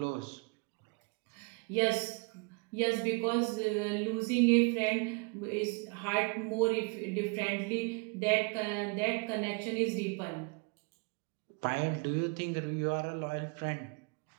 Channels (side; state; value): left; quieter; 32.2 dB